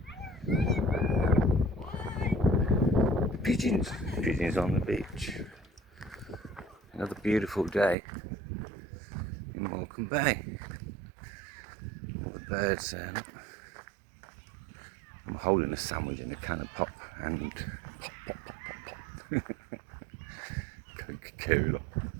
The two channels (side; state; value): left; drops out; at 8.0 s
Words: there. Pigeons. Pigeons on the beach. Another beautiful day in Morecambe Bay. All the birds there. Look. I'm holding a sandwich in a can of pop and pop, pop, pop, pop, pop. Coca-Cola